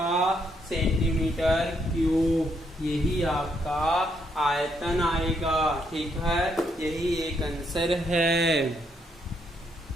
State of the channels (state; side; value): normal; both; correlation 0.74